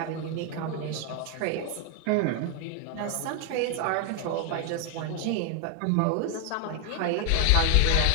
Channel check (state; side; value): different; both; correlation 0.00